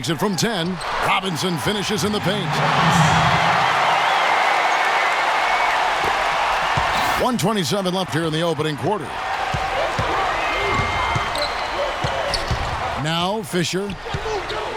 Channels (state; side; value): identical; both; correlation 1.00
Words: it from 10. Robinson finishes in the paint. 1:27 left here in the opening quarter. Now Fisher.